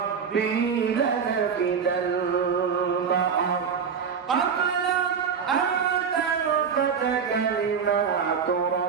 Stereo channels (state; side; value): quieter; left; 6.5 dB